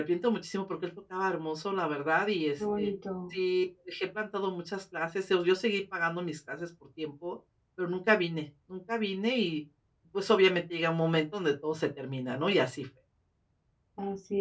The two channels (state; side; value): identical; both; correlation 1.00